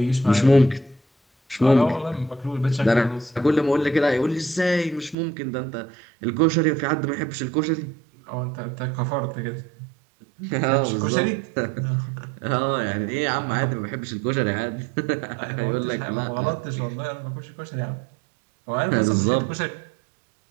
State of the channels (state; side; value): drops out; left; at 5.2 s